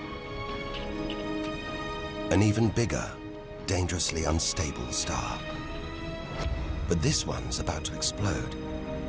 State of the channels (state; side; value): identical; both; correlation 1.00